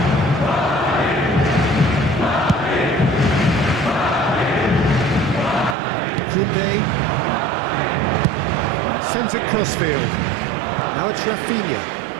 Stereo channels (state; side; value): drops out; left; at 5.8 s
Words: Sends it crossfield. Now it's Rafinha.